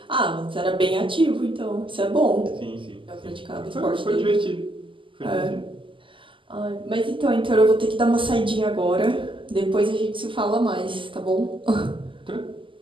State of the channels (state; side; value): late; left; 0.25 ms